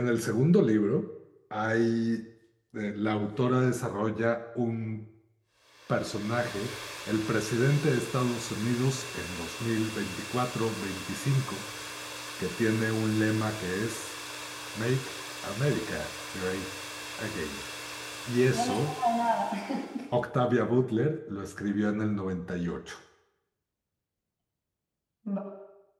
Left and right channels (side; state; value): both; identical; correlation 1.00